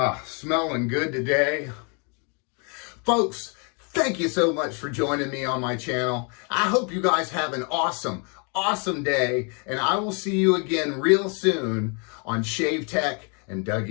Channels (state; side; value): quieter; right; 36.3 dB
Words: Smelling good today. Folks, thank you so much for joining me on my channel. I hope you guys have an awesome day. And I will see you again real soon on Shave Tech and